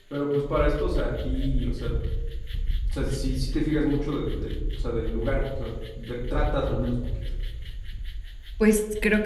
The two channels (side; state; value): both; identical; correlation 1.00